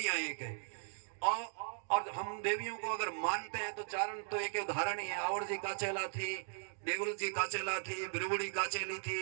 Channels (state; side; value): silent; left; digital silence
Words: एक है। और हम देवियों को अगर मानते हैं तो चारण तो एक उदाहरण ही है। आवड़ जी काचेला थी, देवल जी काचेला थी, बिरबुड़ी काचेली